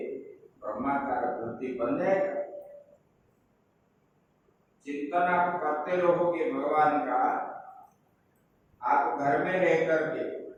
ब्रह्माकार वृत्ति बन जाएगा। चिंतन आप करते रहोगे भगवान का, आप घर में रह करके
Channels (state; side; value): identical; both; correlation 1.00